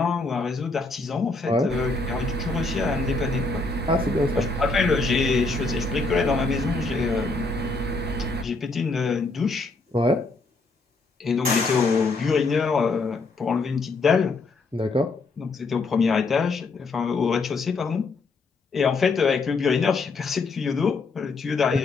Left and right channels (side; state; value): right; quieter; 3.7 dB